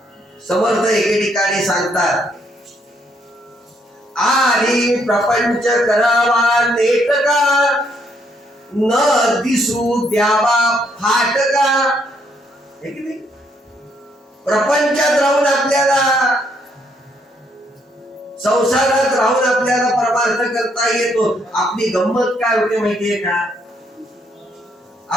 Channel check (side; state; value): both; normal; correlation 0.72